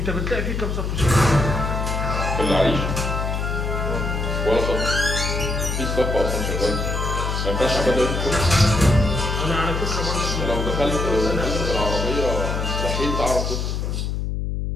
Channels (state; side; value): noise; left; hum, 2 dB below the sound